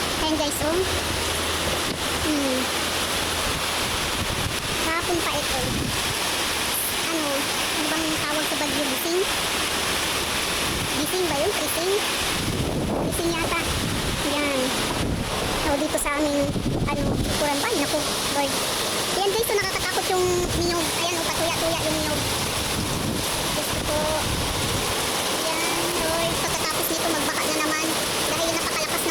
Ayan guys, oh. Kahapon pa ito. Ano bang tawag sa bagyo? Gising? Gising ba yun? Gising? Gising yata. Yan. So, dito sa amin, kuran ba? Naku, Lord. Ayan guys, so nakakatakot yung niyog. Ayan, patuya-tuya yung niyog. Gusto ko. Ayan, Lord. Pagkatapos nito, magbaka na naman. Dahil napakalakas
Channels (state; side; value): identical; both; correlation 1.00